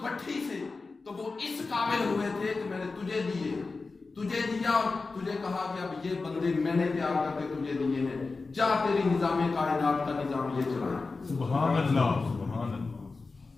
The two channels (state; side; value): quieter; right; 4.0 dB